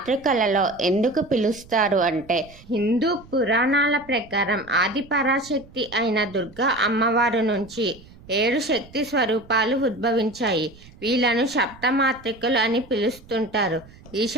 ఎందుకు పిలుస్తారు అంటే, హిందూ పురాణాల ప్రకారం ఆది పరాశక్తి అయిన దుర్గా అమ్మవారు నుంచి 7 శక్తి స్వరూపాలు ఉద్భవించాయి. వీళ్ళను సప్తమాతృకలు అని పిలుస్తుంటారు. ఈ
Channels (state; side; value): noise; right; rumble, 23 dB below the sound